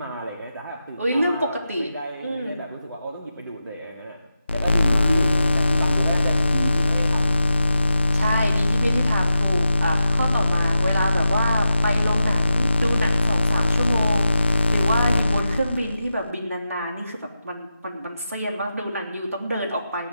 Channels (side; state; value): both; inverted; correlation -0.90